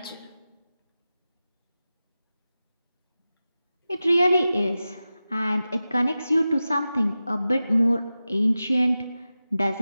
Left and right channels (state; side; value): inverted; both; correlation -0.94